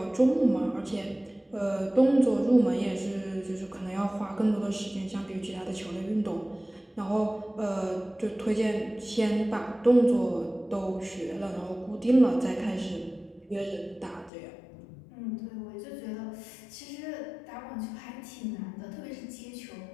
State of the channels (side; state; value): right; drops out; at 14.3 s